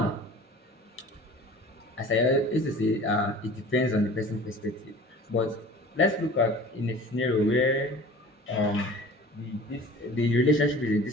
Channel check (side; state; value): both; normal; correlation 0.43